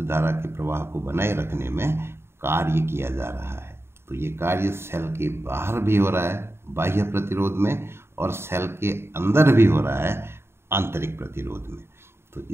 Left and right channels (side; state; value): left; late; 0.12 ms